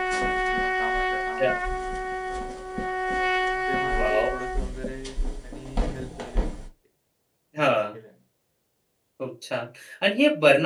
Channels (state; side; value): identical; both; correlation 1.00